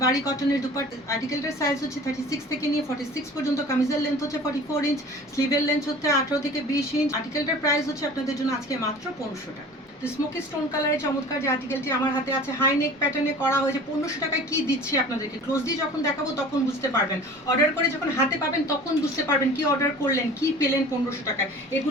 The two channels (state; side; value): normal; both; correlation 0.42